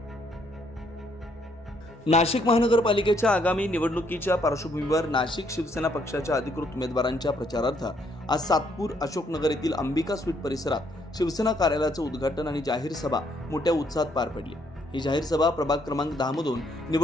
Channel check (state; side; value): normal; both; correlation 0.70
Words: नाशिक महानगरपालिकेच्या आगामी निवडणुकीच्या पार्श्वभूमीवर नाशिक शिवसेना पक्षाच्या अधिकृत उमेदवारांच्या प्रचारार्थ आज सातपूर अशोकनगर येथील अंबिका स्वीट परिसरात शिवसेना कार्यालयाचं उद्घाटन आणि जाहीर सभा मोठ्या उत्साहात पार पडली। ही जाहीर सभा प्रभाग क्रमांक 10 मधून